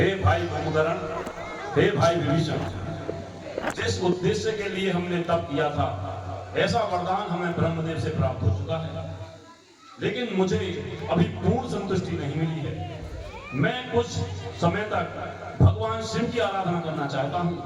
भाई कुंभकर्ण, हे भाई विभीषण, जिस उद्देश्य के लिए हमने तप किया था ऐसा वरदान हमें ब्रह्मदेव से प्राप्त हो चुका है, लेकिन मुझे अभी पूर्ण संतुष्टि नहीं मिली है। मैं कुछ समय तक भगवान शिव की आराधना करना चाहता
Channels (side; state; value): both; identical; correlation 1.00